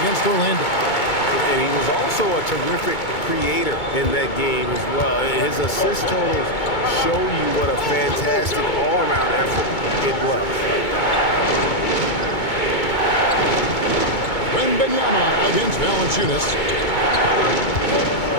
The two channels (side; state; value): right; late; 2.2 ms